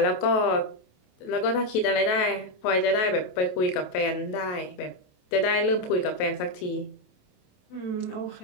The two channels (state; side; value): late; right; 27 ms